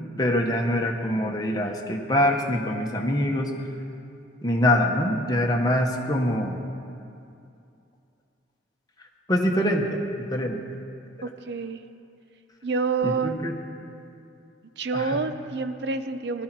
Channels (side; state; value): both; normal; correlation 0.49